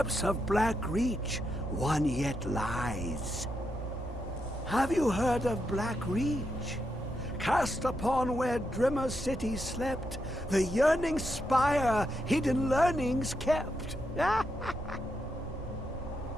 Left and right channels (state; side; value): normal; both; correlation 0.83